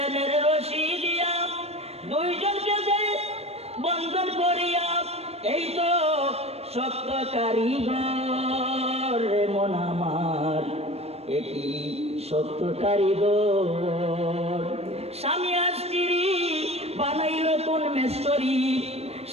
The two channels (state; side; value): late; left; 0.30 ms